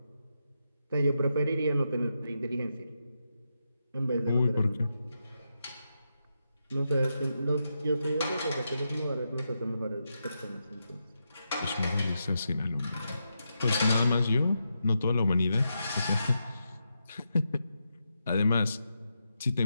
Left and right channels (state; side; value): inverted; both; correlation -0.85